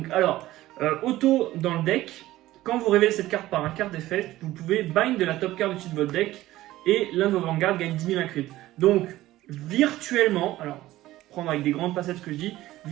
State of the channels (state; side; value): quieter; left; 16.0 dB